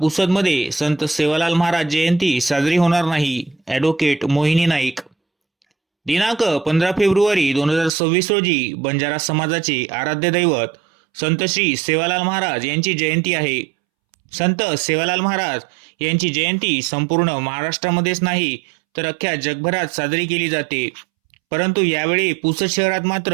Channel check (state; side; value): drops out; left; at 7.9 s